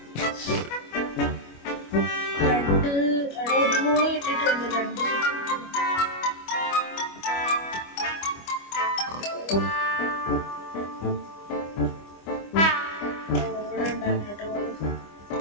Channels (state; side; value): late; right; 25 ms